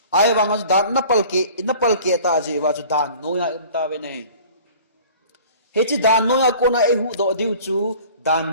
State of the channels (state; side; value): inverted; both; correlation -0.47